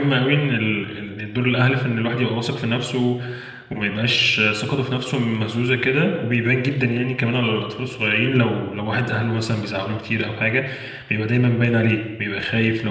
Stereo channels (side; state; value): both; identical; correlation 1.00